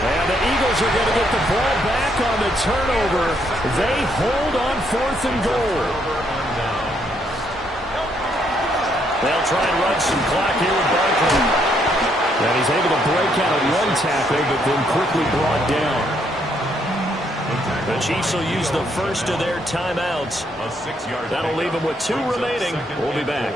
And the Eagles are going to get the ball back on the turnover. They hold on 4th and goal. They'll try and run some clock here with Barkley. And he's able to break out of one tackle, but then quickly brought down. The Chiefs will use the first of their timeouts. That'll leave them with 2 remaining. We'll be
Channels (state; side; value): normal; both; correlation 0.72